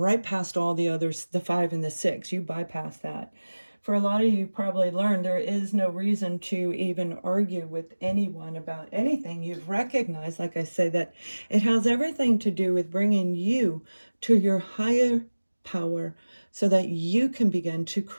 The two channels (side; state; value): both; inverted; correlation -1.00